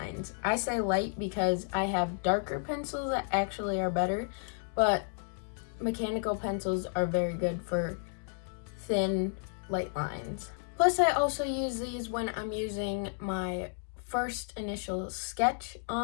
I say light because I have darker pencils that actually are better, but mechanical pencils are very good for thin, light lines. Plus, I also use these when I'm using my first initial sketch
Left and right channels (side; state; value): right; silent; 56 dB below the other